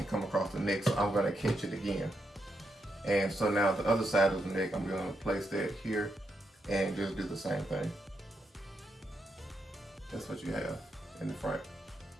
come across the neck, so I'm gonna catch it again. And so now the other side of the neck, I'm gonna place that here and just do the same thing. That's what you have in the front.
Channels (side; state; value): both; normal; correlation 0.82